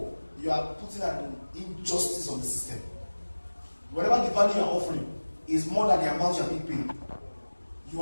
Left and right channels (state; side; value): inverted; both; correlation -1.00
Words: you are putting an injustice on the system. Whatever the value you are offering is more than the amount you are being paid, you